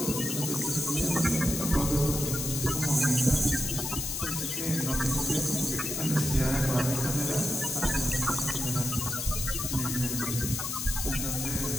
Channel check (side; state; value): left; noise; hiss, 3 dB below the sound